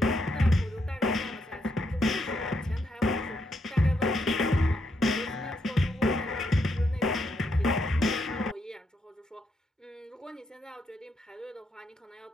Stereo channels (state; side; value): normal; both; correlation 0.78